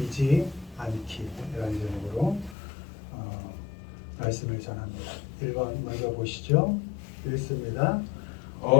말씀을 전합니다. 1번 먼저 보시죠. 읽습니다.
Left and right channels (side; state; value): right; drops out; at 2.6 s